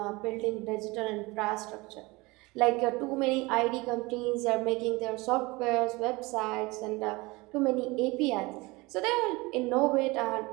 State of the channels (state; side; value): quieter; left; 23.5 dB